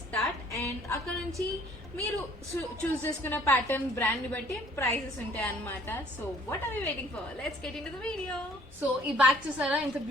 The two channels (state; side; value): normal; both; correlation 0.58